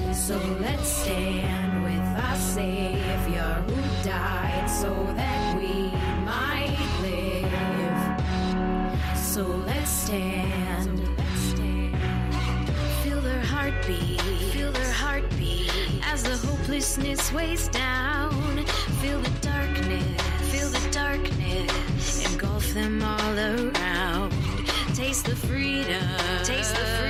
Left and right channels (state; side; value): identical; both; correlation 1.00